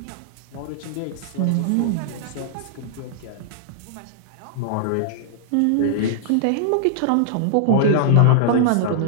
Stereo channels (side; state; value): both; different; correlation -0.01